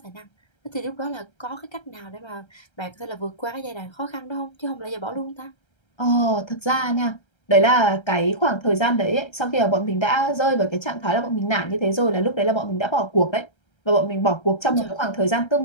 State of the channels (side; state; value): right; late; 1.3 ms